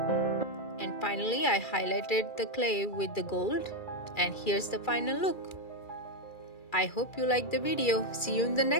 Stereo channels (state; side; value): late; right; 2.3 ms